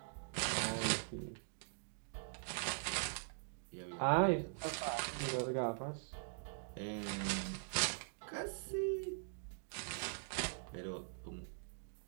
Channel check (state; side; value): silent; left; digital silence